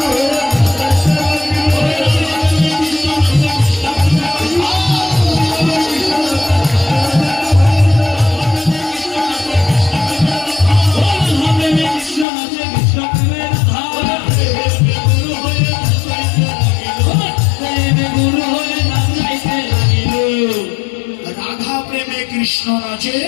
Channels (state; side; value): drops out; right; at 12.2 s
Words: রাধা প্রেমে কৃষ্ণ নাচে,